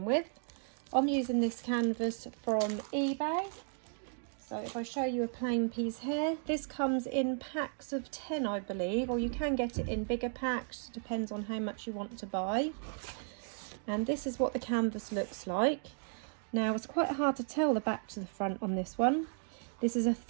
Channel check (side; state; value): left; silent; 55 dB below the other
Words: with. I'm using this canvas from eBay. So if I show you a plain piece here, this comes in packs of 10 I believe, or you can get it in bigger packs, depends on how much you want to buy. And this is what the canvas looks like. Now it's quite hard to tell the back to the front on this one. This is a